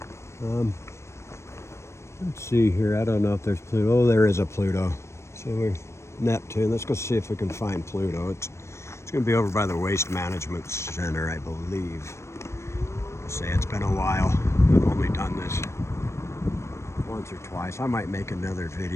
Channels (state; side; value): late; right; 0.13 ms